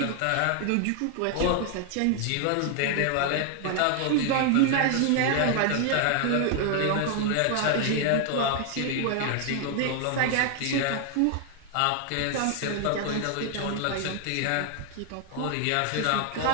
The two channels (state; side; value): different; both; correlation 0.00